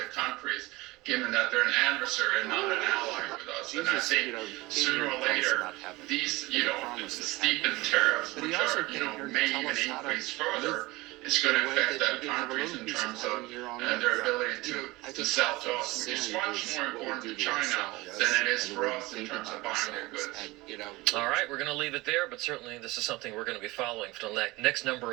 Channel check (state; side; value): quieter; left; 21.3 dB